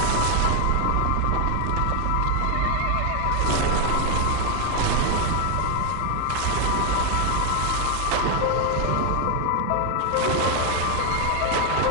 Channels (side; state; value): both; different; correlation 0.00